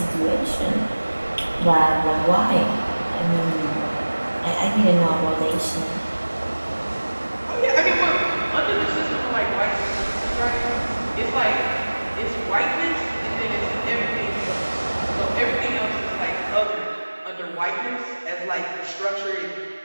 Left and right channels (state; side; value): inverted; both; correlation -1.00